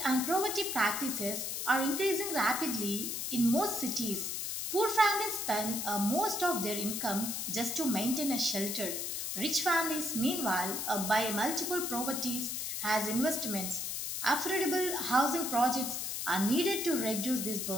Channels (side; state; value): left; noise; hiss, 3 dB below the sound